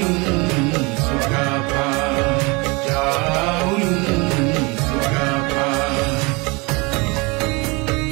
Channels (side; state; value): left; quieter; 27.1 dB